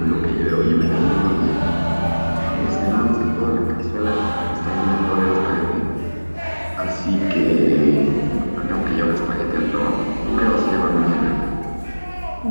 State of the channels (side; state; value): both; inverted; correlation -1.00